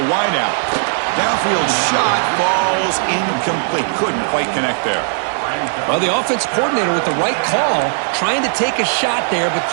wideout. Downfield shot falls incomplete. Couldn't quite connect there. Well, the offense coordinator with the right call, trying to take a shot there, but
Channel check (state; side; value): silent; left; digital silence